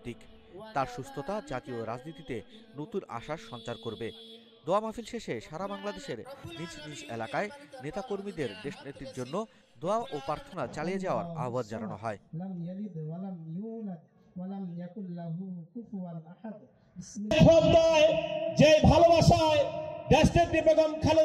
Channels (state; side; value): identical; both; correlation 1.00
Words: তার সুস্থতা জাতীয় রাজনীতিতে নতুন আশার সঞ্চার করবে। দোয়া মাহফিল শেষে সারা বাংলাদেশের নিজ নিজ এলাকায় নেতাকর্মীদের দেশনেত্রীর জন্য দোয়া ও প্রার্থনা চালিয়ে যাওয়ার আহ্বান জানানো হয়। যে ভালোবাসায় দেশনেত্রী বেগম